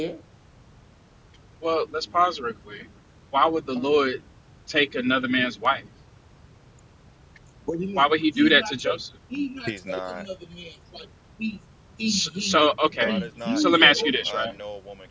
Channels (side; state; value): both; identical; correlation 1.00